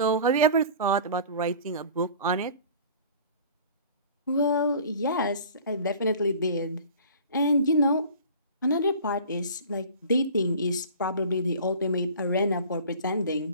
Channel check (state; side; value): inverted; both; correlation -0.43